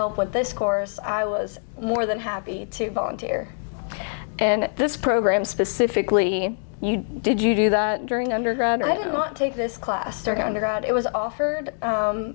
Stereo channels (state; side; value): silent; right; digital silence